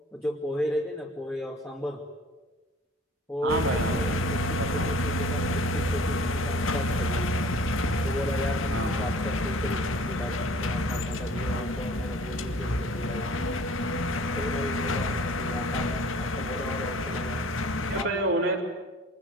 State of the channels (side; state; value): both; normal; correlation 0.50